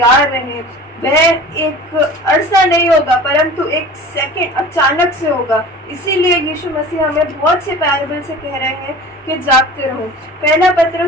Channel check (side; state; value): both; normal; correlation 0.40